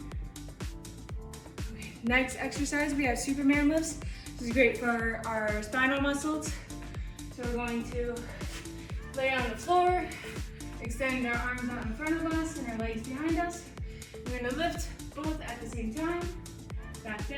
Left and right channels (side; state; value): both; identical; correlation 1.00